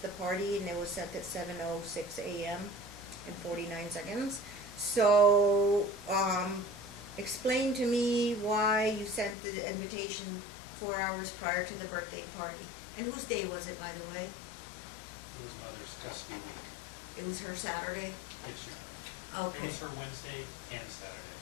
party, and it was sent at 7:06 a.m. and 49 seconds. So, explain to me why you sent the invitation 4 hours prior to the birthday party. And whose day was it, by the way? It was Mother's Custody Week. It was her Saturday? Yes, Your Honor. Okay. It was her Wednesday and Saturday.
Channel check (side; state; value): right; drops out; at 9.3 s